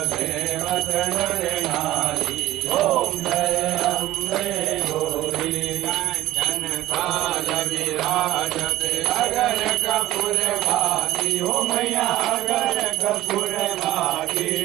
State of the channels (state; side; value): quieter; left; 15.2 dB